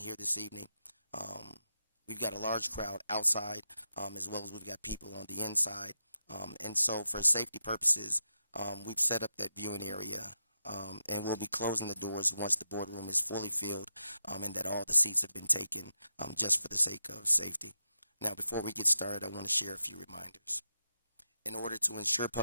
this evening. We've got a large crowd outside, as well as we've got people on the inside. And so for safety purposes, we've set up that viewing area, and we'll be closing the doors once the boardroom is fully filled, and that all the seats have been taken, just for the sake of safety. Now, before we get started, I want to share a few reminders. In order to ensure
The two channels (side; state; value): both; inverted; correlation -0.87